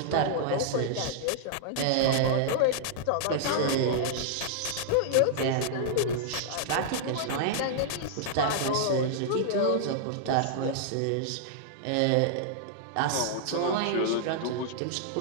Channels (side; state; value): both; different; correlation -0.01